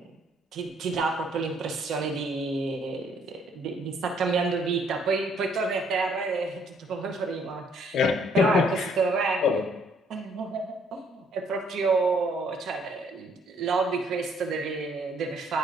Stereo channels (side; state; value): both; normal; correlation 0.65